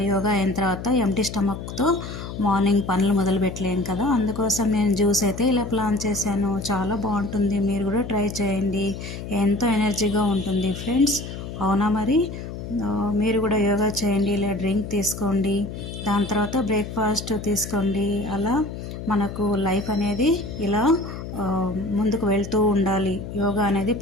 యోగా అయిన తర్వాత ఎంటీ స్టమక్తో మార్నింగ్ పనులు మొదలు పెట్టలేను కదా, అందుకోసం నేను జ్యూస్ అయితే ఇలా ప్లాన్ చేశాను. చాలా బాగుంటుంది, మీరు కూడా ట్రై చేయండి. ఎంతో ఎనర్జీగా ఉంటుంది ఫ్రెండ్స్. అవునా మరి? మీరు కూడా యోగా చేయండి, ఇలా డ్రింక్ తీసుకోండి, దాని తర్వాత బ్రేక్ఫాస్ట్ తీసుకోండి. అలా మనకు లైఫ్ అనేది ఇలా ముందుకు వెళ్తూ ఉండాలి. యోగా అనేది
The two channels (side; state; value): left; noise; hum, 9 dB below the sound